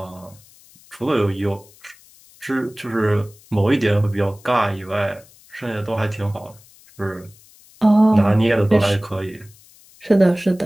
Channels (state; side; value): noise; left; hiss, 26 dB below the sound